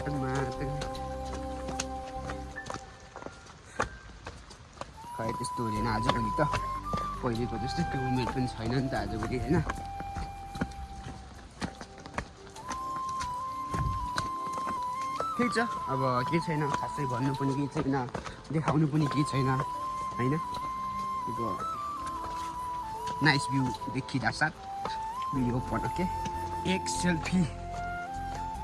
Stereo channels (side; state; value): both; identical; correlation 1.00